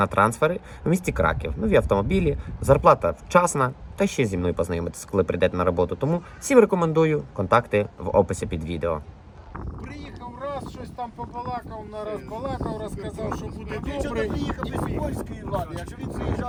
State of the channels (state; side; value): identical; both; correlation 1.00